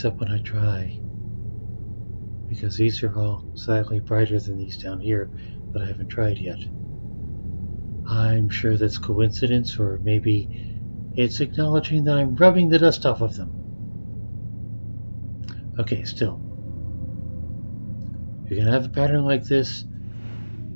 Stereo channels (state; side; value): inverted; both; correlation -1.00